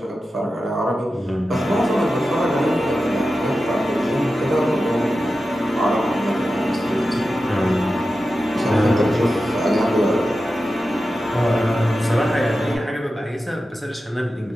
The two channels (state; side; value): normal; both; correlation 0.92